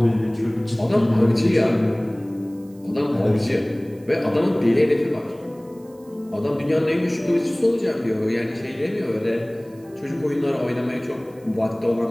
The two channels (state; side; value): noise; right; hiss, 30 dB below the sound